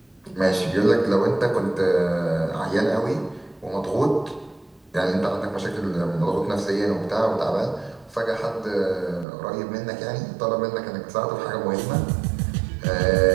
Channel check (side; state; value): left; drops out; at 9.2 s